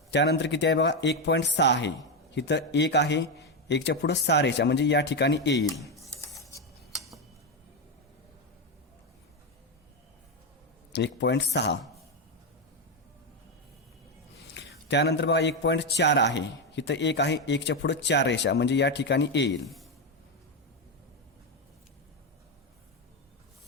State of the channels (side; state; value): both; normal; correlation 0.09